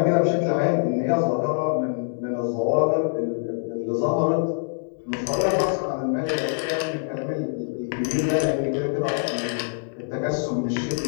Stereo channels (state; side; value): silent; right; 62 dB below the other